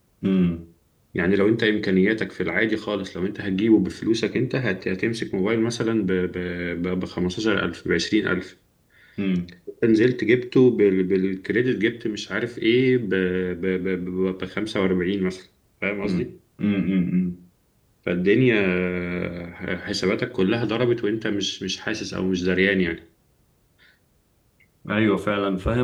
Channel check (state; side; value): identical; both; correlation 1.00